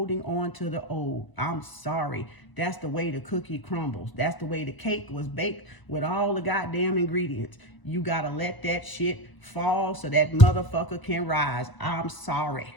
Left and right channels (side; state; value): right; late; 1.0 ms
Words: on to the old. I'm sorry. That's the way the cookie crumbles. That's the way the cake was baked with all the goddamn ingredients. You gotta let that shit fall so that motherfucker can rise. I'm sorry.